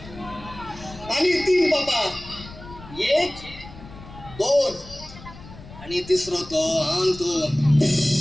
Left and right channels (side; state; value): left; noise; rumble, 17 dB below the sound